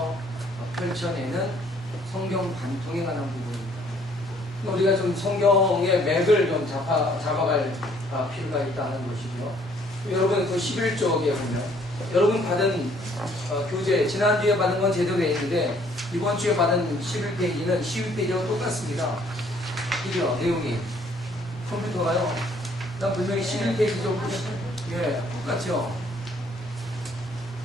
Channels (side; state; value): both; normal; correlation 0.62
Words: 펼쳐내는 성경 관통에 관한 부분입니다. 우리가 좀 성경의 맥을 좀 잡아갈 필요가 있다는 것이죠. 여러분 그 11쪽에 보면 여러분 받은 교재, 지난주에 받은 건 제대로 돼 있는데 이번 주에 받은 11페이지는 12페이지와 똑같습니다. 이죠, 내용이. 컴퓨터가요. 난 분명히 11페이지죠. 예, 똑같죠.